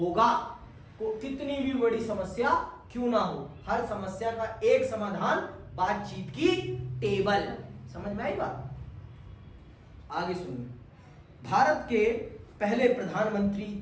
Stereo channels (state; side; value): identical; both; correlation 1.00